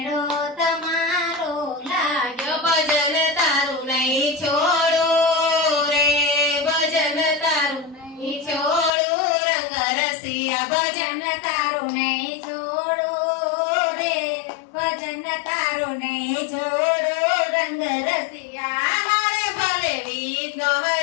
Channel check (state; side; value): drops out; right; at 8.9 s